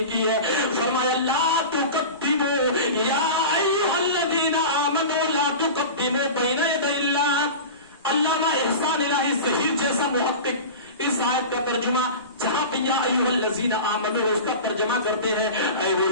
کی ہے؟ فرمایا لا تقدموا یا ایھا الذین آمنوا لا تقدموا بین یدی اللہ. علامہ احسان الہی ظہیر جیسا محقق اس آیت کا ترجمہ جہاں پہ یا ایھا الذین آمنوا اس کا ترجمہ کرتے ہیں اے وہ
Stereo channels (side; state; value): both; inverted; correlation -0.31